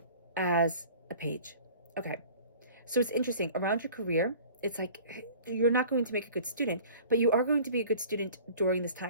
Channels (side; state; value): both; inverted; correlation -0.46